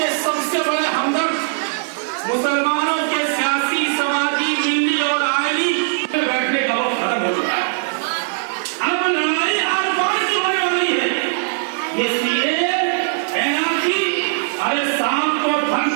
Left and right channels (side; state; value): left; silent; digital silence